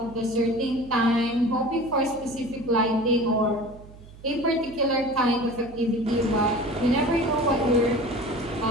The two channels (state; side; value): noise; right; hum, 20 dB below the sound